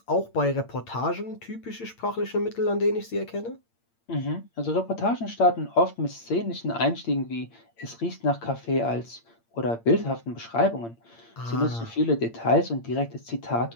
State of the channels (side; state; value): right; late; 8.7 ms